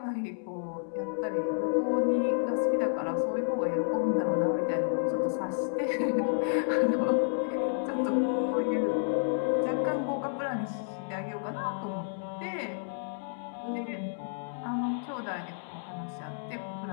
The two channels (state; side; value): silent; right; digital silence